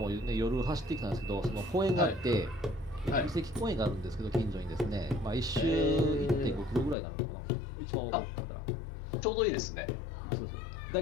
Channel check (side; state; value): right; drops out; at 7.0 s